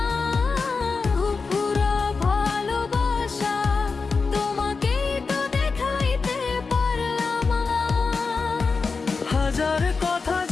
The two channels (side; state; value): right; quieter; 4.6 dB